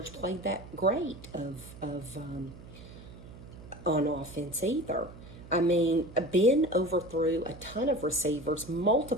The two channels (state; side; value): noise; right; hum, 17 dB below the sound